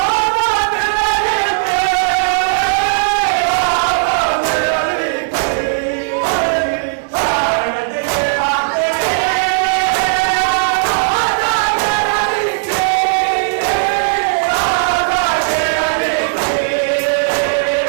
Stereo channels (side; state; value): left; silent; digital silence